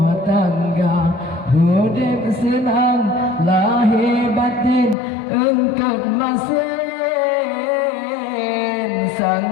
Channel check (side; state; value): right; drops out; at 5.0 s